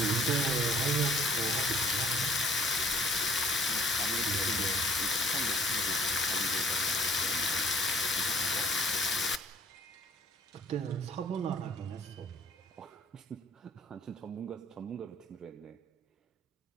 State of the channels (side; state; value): both; normal; correlation 0.57